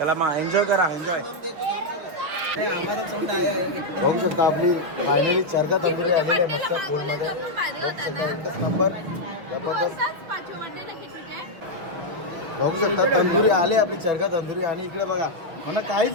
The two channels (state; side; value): late; left; 6.0 ms